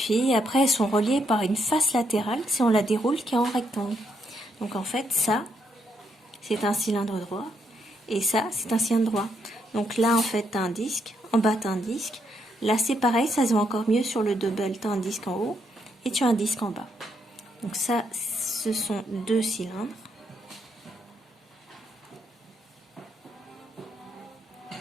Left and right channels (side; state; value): both; normal; correlation 0.77